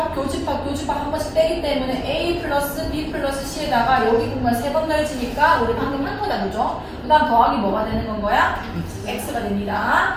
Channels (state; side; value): identical; both; correlation 1.00